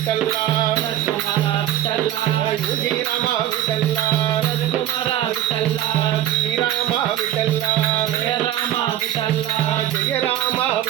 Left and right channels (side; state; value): left; quieter; 12.3 dB